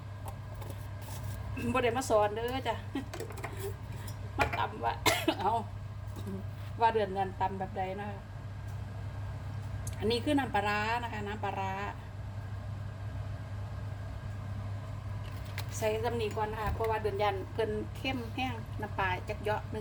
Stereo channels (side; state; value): both; identical; correlation 1.00